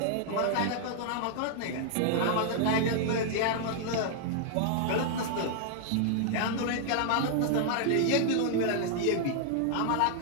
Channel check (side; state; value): both; different; correlation 0.00